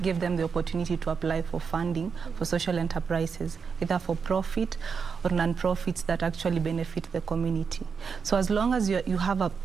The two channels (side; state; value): left; quieter; 5.8 dB